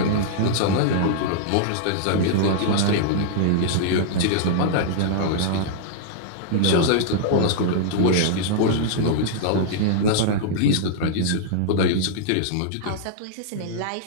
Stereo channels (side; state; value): both; different; correlation -0.02